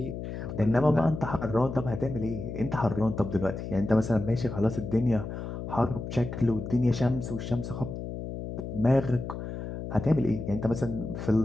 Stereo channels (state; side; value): noise; left; hum, 7 dB below the sound